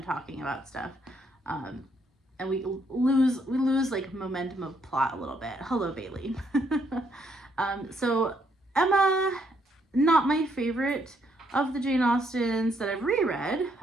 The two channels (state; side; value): normal; both; correlation 0.72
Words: talking about stuff. And we lose like momentum of plot a little bit. Hello, Bailey. So Emma, not my favorite of the Jane Austens that I've reread.